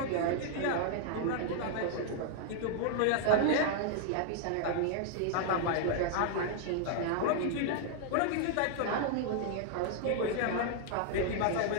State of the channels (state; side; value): different; both; correlation 0.00